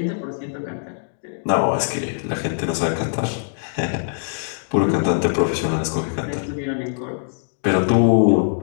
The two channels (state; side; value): silent; right; digital silence